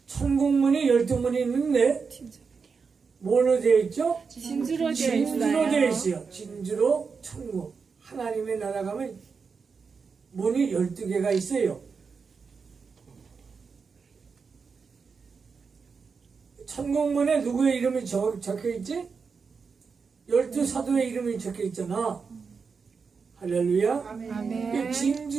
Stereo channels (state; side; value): quieter; left; 5.3 dB